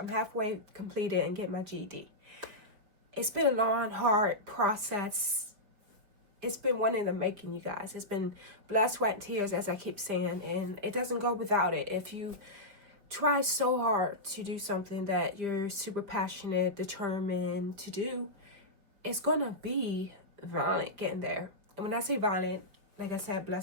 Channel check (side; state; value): left; late; 5.0 ms